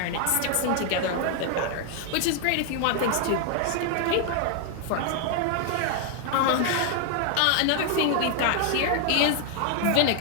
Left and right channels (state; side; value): different; both; correlation 0.00